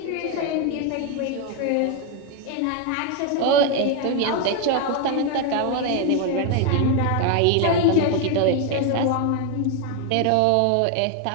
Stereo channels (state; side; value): different; both; correlation 0.01